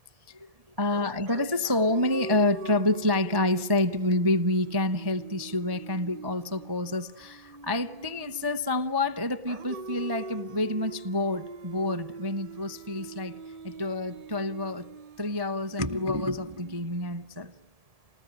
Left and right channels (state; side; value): late; left; 1.7 ms